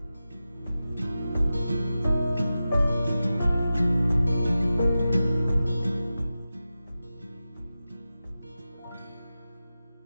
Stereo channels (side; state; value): both; inverted; correlation -0.94